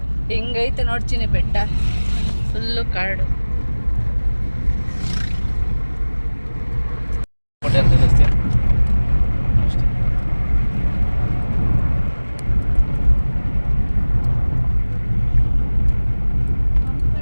ಹೆಂಗೈತೆ ನೋಡ್ತೀನಿ ಬೆಟ್ಟ ಫುಲ್ಲು ಕಾಡು ಹೋಟೆಲ್ ತಿಳಿಸ್ತೀಯ ಅಷ್ಟೇ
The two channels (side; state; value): both; inverted; correlation -1.00